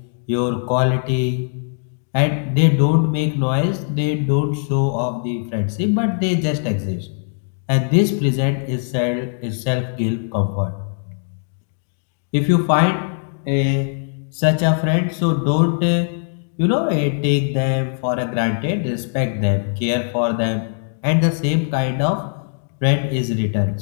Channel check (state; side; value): silent; right; digital silence